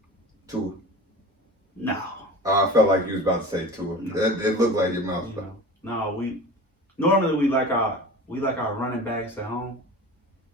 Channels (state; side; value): normal; both; correlation 0.34